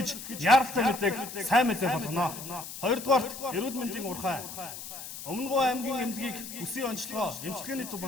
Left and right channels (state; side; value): noise; left; hiss, 10 dB below the sound